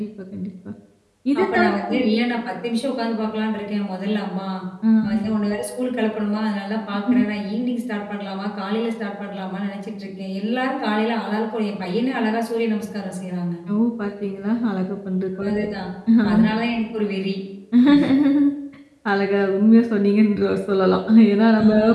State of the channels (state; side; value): identical; both; correlation 1.00